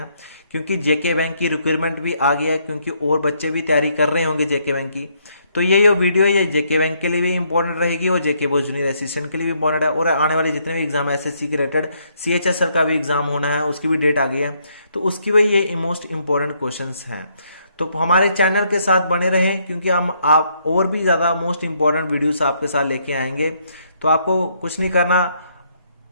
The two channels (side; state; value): both; inverted; correlation -0.72